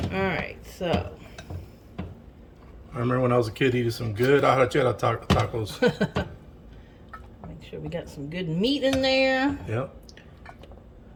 right, so. I remember when I was a kid eating some good arrachera tacos. Make sure we got some good meat in there. Yep.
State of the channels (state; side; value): identical; both; correlation 1.00